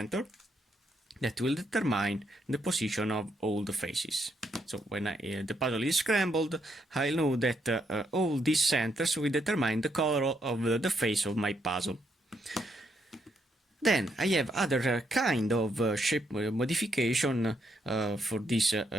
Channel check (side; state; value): both; normal; correlation 0.76